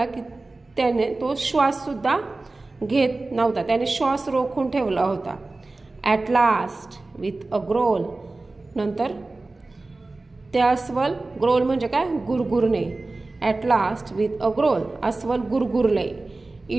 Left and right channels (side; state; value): left; quieter; 3.2 dB